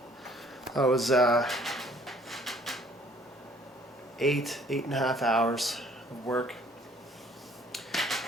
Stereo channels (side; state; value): both; normal; correlation 0.58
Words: That was 8.5 hours of work,